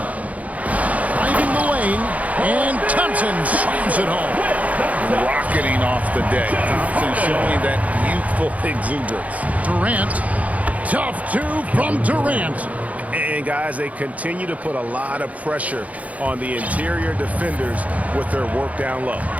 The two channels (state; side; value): late; left; 0.070 ms